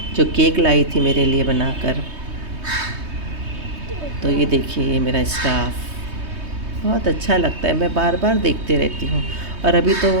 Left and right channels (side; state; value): left; late; 3.2 ms